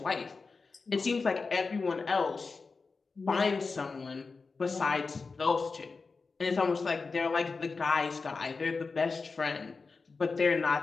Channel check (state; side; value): quieter; right; 4.3 dB